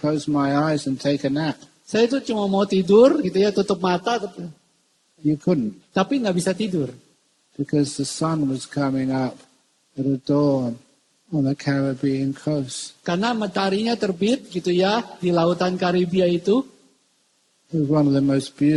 my eyes and take a nap. Saya itu cuma mau tidur gitu ya, tutup mata. You couldn't. Tapi nggak bisa tidur. Because the sun was coming up at a dawn on the Caribbean coast. Karena mataharinya terbit gitu ya di lautan Karibia itu. It was one of the most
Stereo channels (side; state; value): both; identical; correlation 1.00